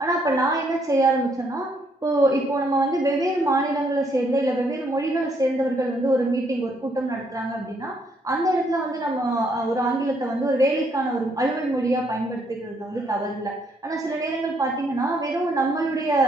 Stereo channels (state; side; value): normal; both; correlation 0.71